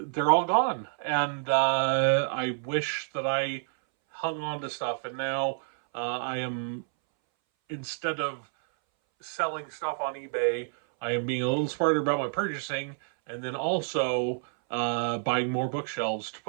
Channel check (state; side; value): silent; left; 59 dB below the other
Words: they're all gone. And I wish that I hung on to stuff. And now I am, instead of selling stuff on eBay, I am being a little smarter about my purchasing, and then also buying more bookshelves to